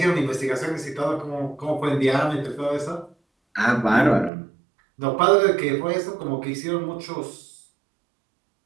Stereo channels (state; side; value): drops out; left; at 4.3 s